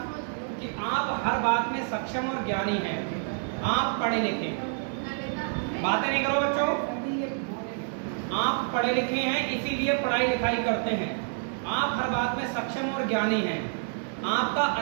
कि आप हर बात में सक्षम और ज्ञानी हैं, आप पढ़े लिखे। बातें नहीं करो बच्चों, आप पढ़े लिखे हैं इसीलिए पढ़ाई लिखाई करते हैं। आप हर बात में सक्षम और ज्ञानी हैं। आपका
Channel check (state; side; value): silent; left; digital silence